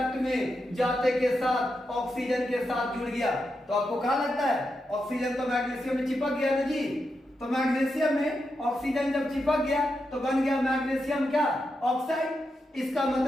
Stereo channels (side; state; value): both; normal; correlation 0.86